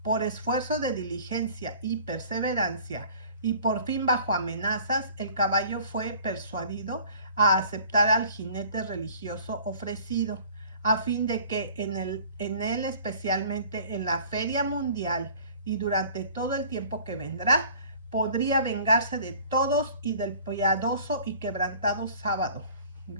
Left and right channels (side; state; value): both; inverted; correlation -0.49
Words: por esfuerzo de diligencia y perseverancia, y por fin bajo amenazas, el caballo fue persuadido a aceptar al jinete religioso ofrecido, a fin de que en él, especialmente en la feria mundial y durante todo el tiempo que vendrá, podría vengarse de todos y del piadoso y quebrantado sábado